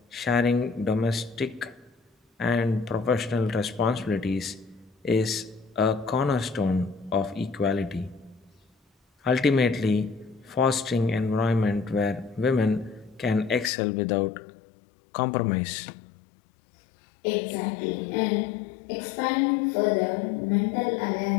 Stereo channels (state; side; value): drops out; right; at 13.7 s